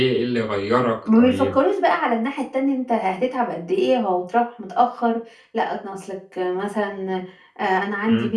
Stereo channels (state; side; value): identical; both; correlation 1.00